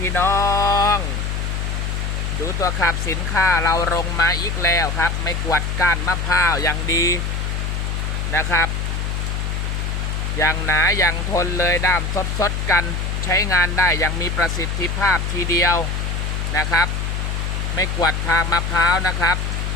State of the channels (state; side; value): noise; left; hum, 1 dB below the sound